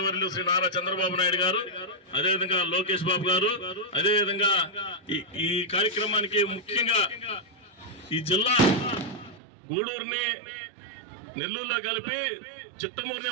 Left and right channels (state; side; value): drops out; left; at 9.4 s